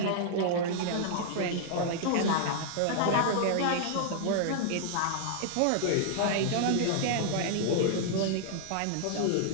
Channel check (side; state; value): both; different; correlation -0.01